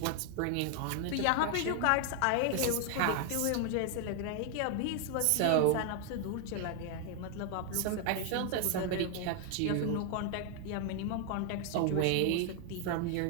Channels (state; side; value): different; both; correlation 0.00